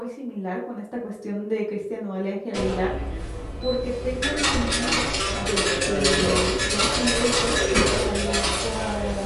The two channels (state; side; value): identical; both; correlation 1.00